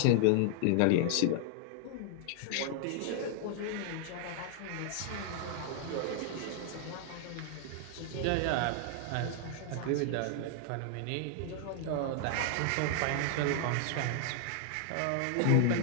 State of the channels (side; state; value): both; different; correlation 0.00